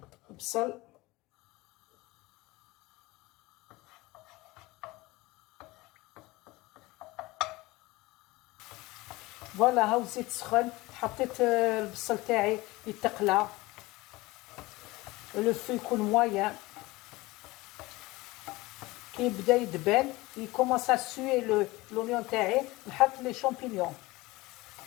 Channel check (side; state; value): right; quieter; 21.1 dB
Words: البصل فوالا هاو الزيت سخن. حطيت البصل تاعي يتقلى، لو فو يكون مويان. كي يبدا يدبل يكومونس ا سوي لونيون تاعي، نحط لي شامبينيون.